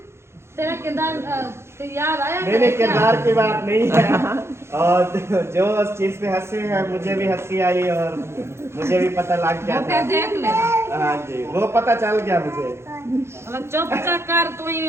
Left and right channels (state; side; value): late; left; 0.13 ms